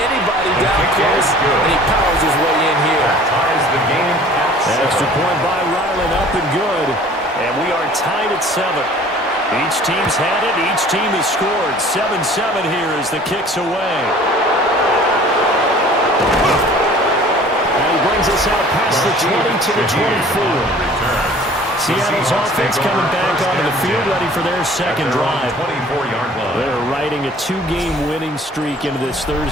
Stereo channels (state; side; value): normal; both; correlation 0.49